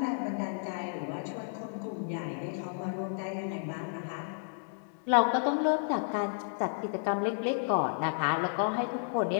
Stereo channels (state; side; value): silent; right; digital silence